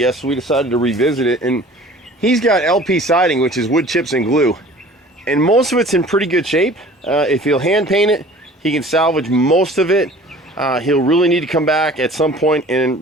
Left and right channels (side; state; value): both; normal; correlation 0.46